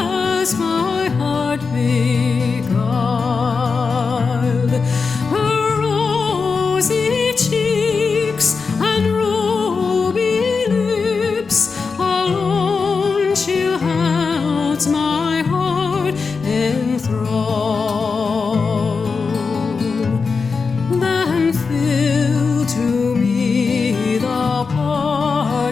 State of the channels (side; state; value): right; quieter; 4.9 dB